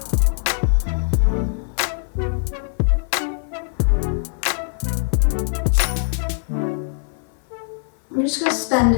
We're just going to spend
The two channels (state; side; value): silent; right; 57 dB below the other